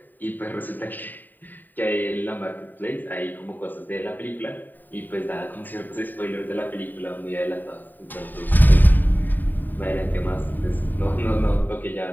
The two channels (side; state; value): right; late; 0.089 ms